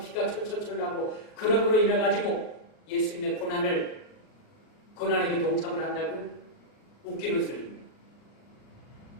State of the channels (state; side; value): late; right; 38 ms